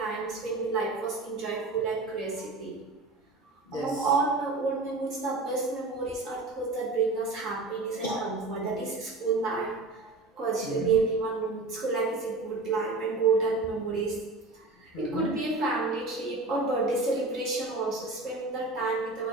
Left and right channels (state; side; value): quieter; left; 3.3 dB